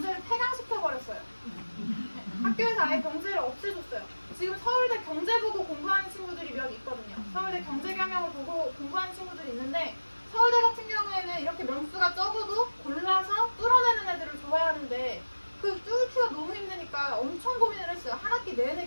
폐강시켜버렸어요. 학교에서 아예 경제를 없애줬어요. 지금 서울대 경제 보고 공부하는 친구들이 몇 있거든요. 서울대 경제경영을 보고 공부하는 친구들이 있는데, 서울대 같은 경우에는 이렇게 명수가 적어도 골라서 뚫어내는 애들을 좋아하는데, 그 뚫기가 너무 힘드니까 엄청 고민을 했어요. 한 학기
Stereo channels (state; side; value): inverted; both; correlation -1.00